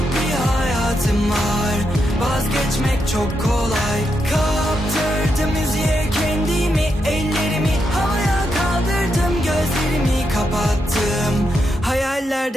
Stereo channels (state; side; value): normal; both; correlation 0.83